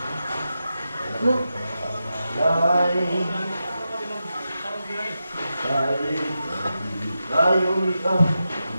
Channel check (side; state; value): both; inverted; correlation -0.89